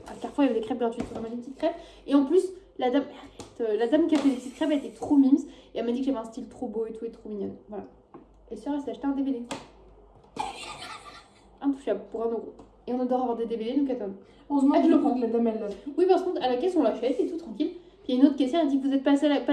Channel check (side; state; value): both; identical; correlation 1.00